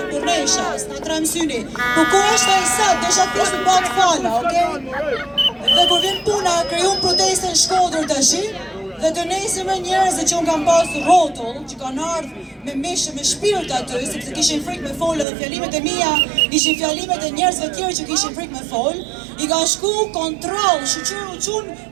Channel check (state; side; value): drops out; left; at 15.2 s